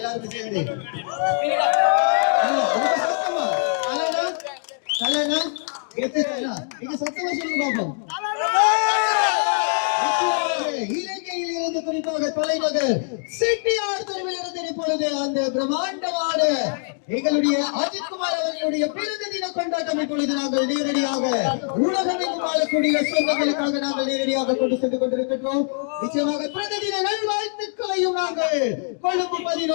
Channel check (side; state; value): right; silent; 63 dB below the other